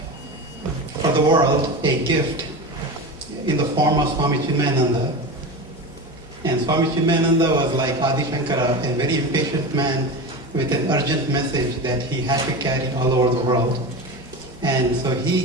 for the world a gift in the form of Swami Chinmayananda. And Swami Chinmayananda was like Adi Shankara, a very impatient man with an urgent message that he had to carry all over the world. And so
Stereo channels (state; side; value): normal; both; correlation 0.25